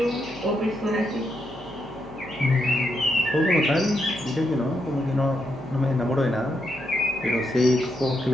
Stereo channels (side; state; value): left; noise; hum, 22 dB below the sound